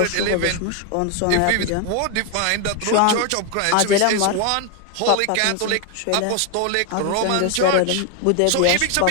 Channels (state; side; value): different; both; correlation 0.01